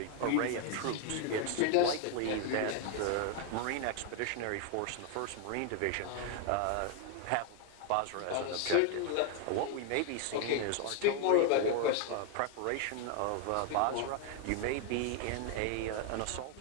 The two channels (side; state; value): both; different; correlation 0.00